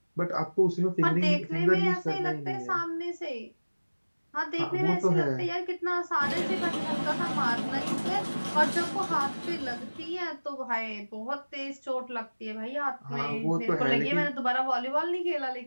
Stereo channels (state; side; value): inverted; both; correlation -1.00